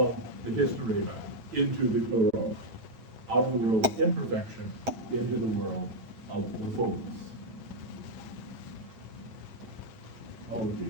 the hysterema into the pleroma, out of the world of imperfection into the world of the fullness. Oh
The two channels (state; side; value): late; left; 9.1 ms